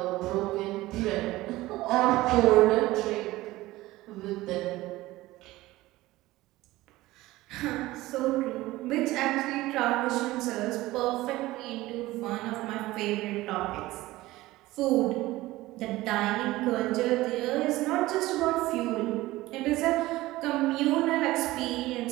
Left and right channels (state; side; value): quieter; left; 18.0 dB